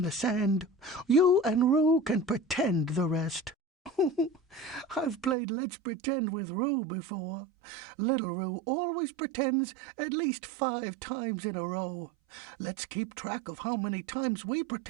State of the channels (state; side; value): drops out; left; at 5.4 s